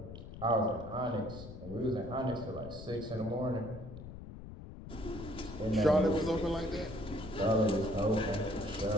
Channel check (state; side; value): noise; left; rumble, 12 dB below the sound